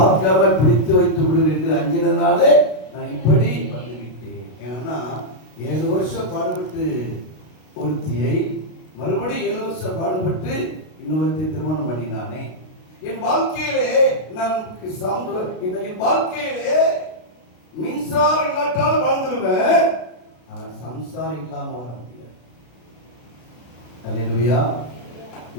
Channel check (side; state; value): right; late; 32 ms